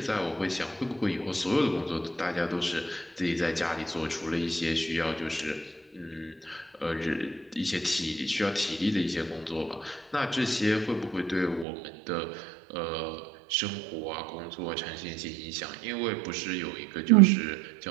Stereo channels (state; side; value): drops out; left; at 11.7 s